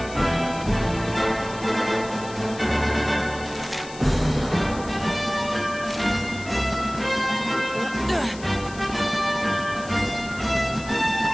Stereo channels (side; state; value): left; noise; hiss, 17 dB below the sound